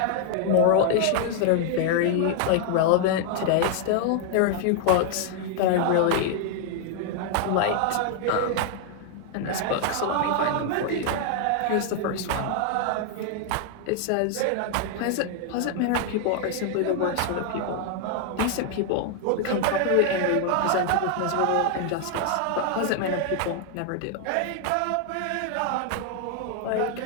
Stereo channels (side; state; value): both; different; correlation 0.00